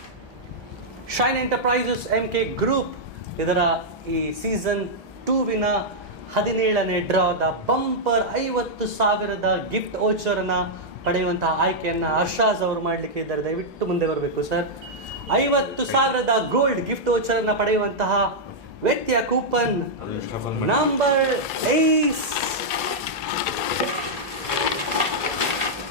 ಶೈನ್ ಎಂಟರ್ಪ್ರೈಸಸ್ MK ಗ್ರೂಪ್ ಇದರ ಈ ಸೀಸನ್ 2ವಿನ 17ನೇ ಡ್ರಾದ ಬಂಪರ್ 50,000 ಗಿಫ್ಟ್ ವೋಚರನ್ನು ಪಡೆಯುವಂತಹ ಆಯ್ಕೆಯನ್ನು ಹರ್ಷಾಜ್ ಅವರು ಮಾಡಲಿಕ್ಕೆ ಇದ್ದಾರೆ. ದಯವಿಟ್ಟು ಮುಂದೆ ಬರಬೇಕು ಸರ್. 50,000 ಗೋಲ್ಡ್ ಗಿಫ್ಟ್ ವೋಚರನ್ನು ಪಡೆಯುವಂತಹ ವ್ಯಕ್ತಿಯ ಕೂಪನ್ ನಂಬರ್ 8.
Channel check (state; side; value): normal; both; correlation -0.06